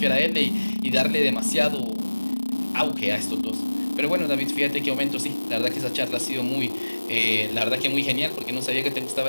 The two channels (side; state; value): both; inverted; correlation -1.00